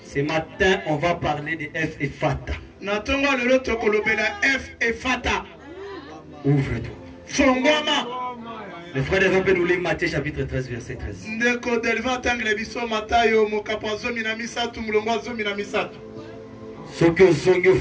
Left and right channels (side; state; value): both; identical; correlation 1.00